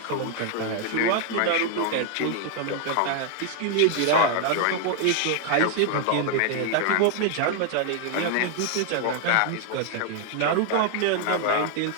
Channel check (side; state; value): both; different; correlation 0.00